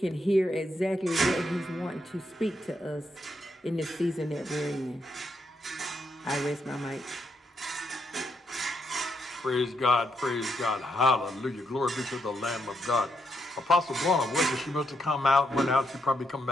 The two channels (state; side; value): normal; both; correlation 0.79